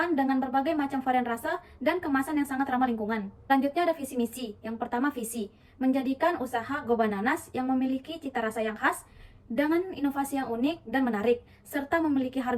dengan berbagai macam varian rasa dan kemasan yang sangat ramah lingkungan. Selanjutnya ada visi misi. Yang pertama visi, menjadikan usaha Go Bananas yang memiliki cita rasa yang khas dengan inovasi yang unik dan menarik, serta memiliki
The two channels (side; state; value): both; identical; correlation 1.00